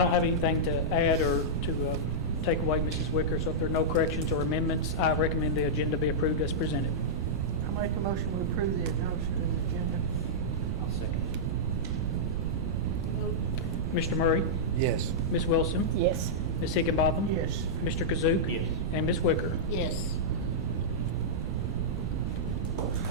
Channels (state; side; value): noise; right; rumble, 2 dB below the sound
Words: have anything to add or to take away, Mrs. Wicker, so if there are no corrections or amendments, I recommend the agenda be approved as presented. I make a motion to approve the adoption of the agenda. I'll second. Vote. Mr. Murray? Yes. Ms. Wilson? Yes. Ms. Higginbotham? Yes. Mr. Kazook? Yes. And Ms. Wicker? Yes.